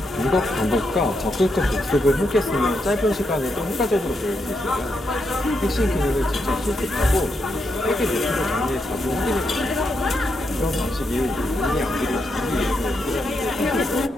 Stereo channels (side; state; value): both; normal; correlation 0.82